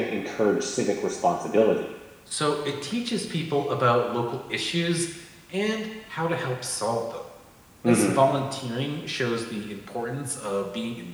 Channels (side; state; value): both; identical; correlation 1.00